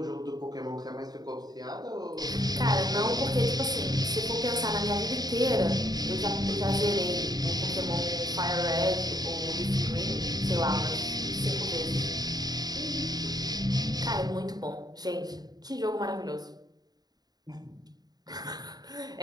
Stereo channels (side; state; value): left; late; 0.19 ms